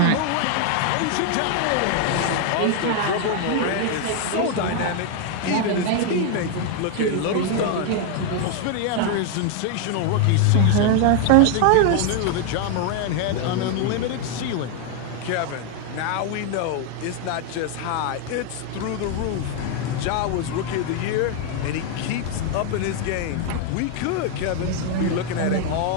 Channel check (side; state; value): both; different; correlation 0.00